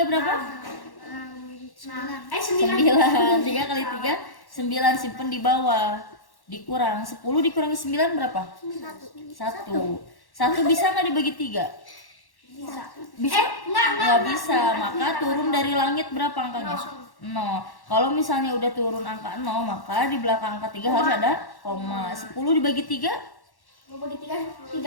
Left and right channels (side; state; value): right; late; 1.1 ms